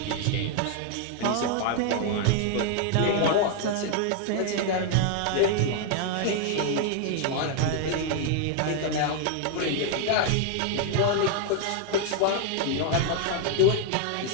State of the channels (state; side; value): different; both; correlation 0.00